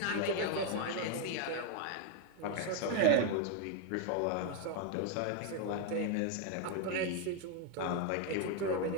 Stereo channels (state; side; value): different; both; correlation 0.00